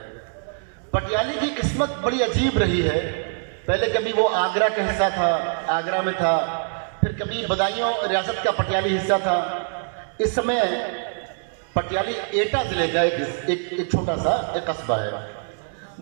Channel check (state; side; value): silent; left; 60 dB below the other